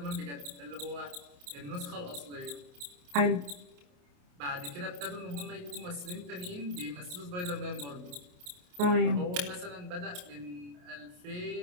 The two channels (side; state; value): left; late; 28 ms